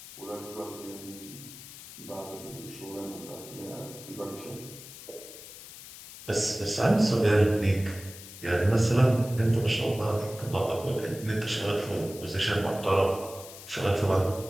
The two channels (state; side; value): noise; left; hiss, 15 dB below the sound